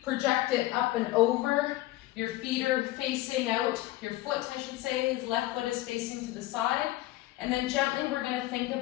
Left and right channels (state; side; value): quieter; right; 16.8 dB